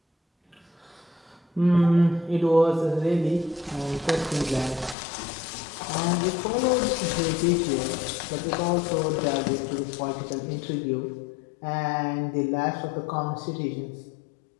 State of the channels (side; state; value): right; drops out; at 5.0 s